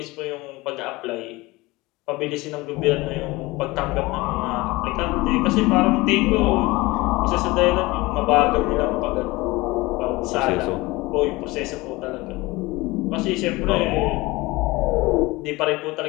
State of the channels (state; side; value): quieter; right; 21.6 dB